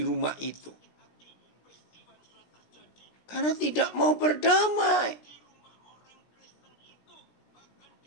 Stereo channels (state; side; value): late; right; 16 ms